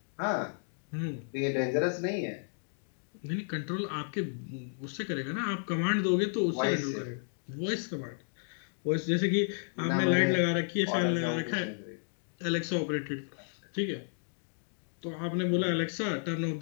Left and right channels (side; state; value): right; silent; digital silence